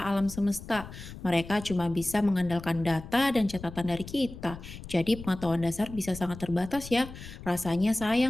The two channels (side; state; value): left; noise; rumble, 13 dB below the sound